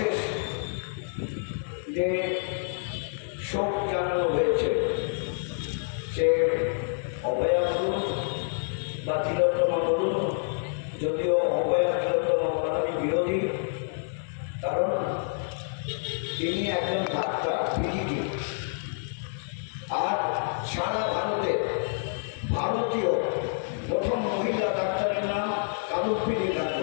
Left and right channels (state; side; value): silent; right; digital silence